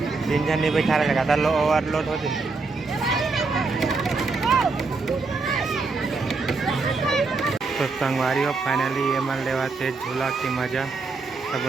तीन जन नहीं बैठा रहेगा था ओवरलोड होते। तो संगवारी हो फाइनली ये मन लेवा से झूला की मजा सब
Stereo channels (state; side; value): quieter; left; 4.0 dB